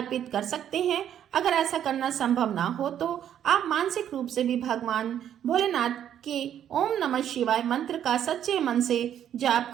कर सकते हैं। अगर ऐसा करना संभव ना हो तो आप मानसिक रूप से भी भगवान भोलेनाथ के ओम नमः शिवाय मंत्र का सच्चे मन से जाप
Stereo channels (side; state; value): left; quieter; 10.0 dB